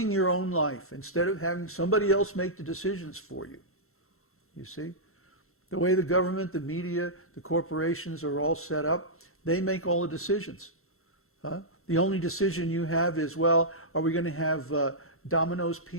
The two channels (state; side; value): late; right; 0.62 ms